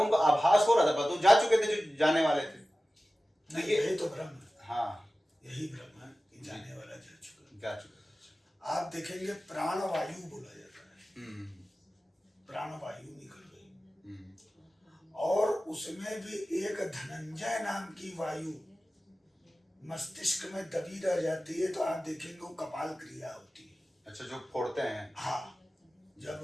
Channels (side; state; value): both; normal; correlation 0.96